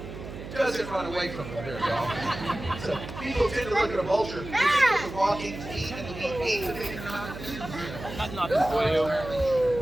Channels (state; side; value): noise; right; hum, 11 dB below the sound